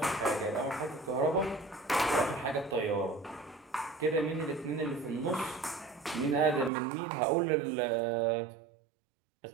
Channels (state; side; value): drops out; left; at 6.7 s